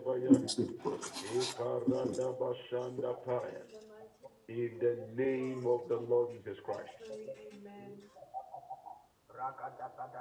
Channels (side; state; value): both; identical; correlation 1.00